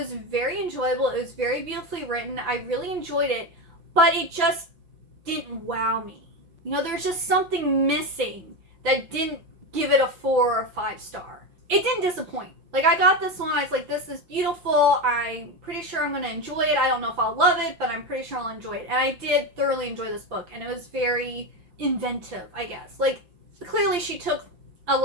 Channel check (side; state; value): left; late; 6.0 ms